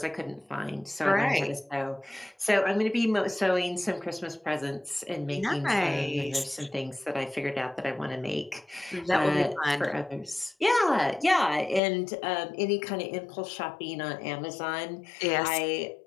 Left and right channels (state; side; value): drops out; right; at 11.8 s